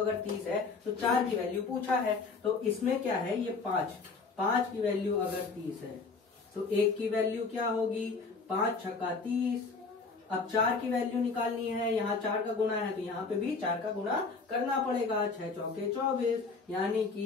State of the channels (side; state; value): right; quieter; 4.4 dB